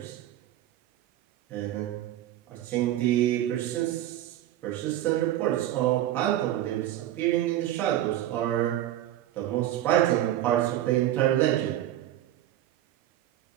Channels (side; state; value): left; quieter; 13.1 dB